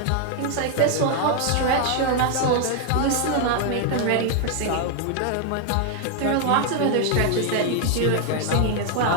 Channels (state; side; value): different; both; correlation 0.00